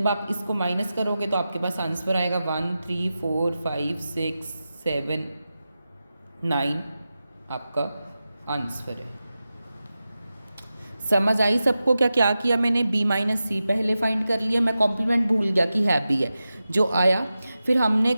आप इसको माइनस करोगे तो आपके पास आंसर आएगा 1 3 4 5 6 7 9 आपका आंसर है। समझ आई सबको क्या क्या किया मैंने, b माइनस सी पहले फाइंड कर लिया, मैं कॉम्प्लीमेंट भूल गया कि है भी है जो आया। फिर हमने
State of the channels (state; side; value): inverted; both; correlation -0.93